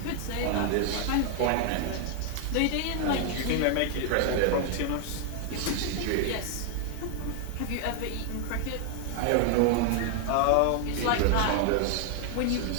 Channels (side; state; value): both; different; correlation 0.00